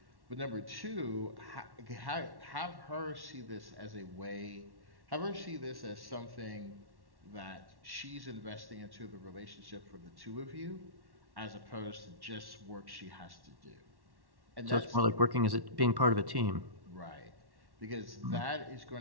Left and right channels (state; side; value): late; left; 1.1 ms